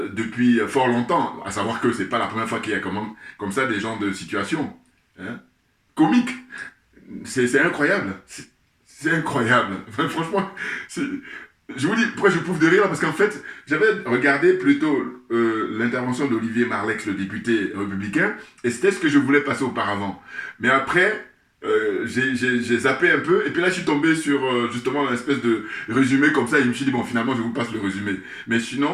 fort longtemps. À savoir que c'est pas la première fois qu'il y a comme ça des gens de situation. Hein, comique. C'est incroyable. C'est incroyable. Enfin, franchement, je vous dis pourquoi je pouffe de rire, parce qu'en fait, j'avais regardé plutôt l'intervention d'Olivier Marleix, le député républicain, et c'était ce que je voulais passer auparavant. Mais après, j'ai zappé un peu, et puis là, je suis tombé sur justement une espèce de résumé comme ça, et je me suis dit, bon, finalement, je vous passe le résumé. Mais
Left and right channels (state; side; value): identical; both; correlation 1.00